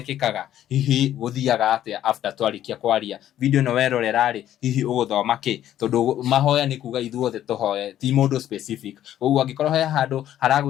hihi gũthiaga atĩa after twarĩkia kwaria video ĩno werorera rĩ hihi ũgũthoma kĩ tondũ mahoya nĩ kuga ithuothe tũhoye ti mũndũ specific koguo angĩkorwo he handũ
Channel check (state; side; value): quieter; right; 11.8 dB